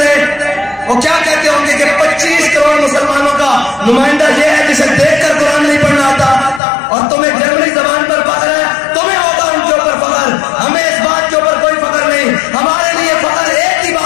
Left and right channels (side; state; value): right; drops out; at 6.6 s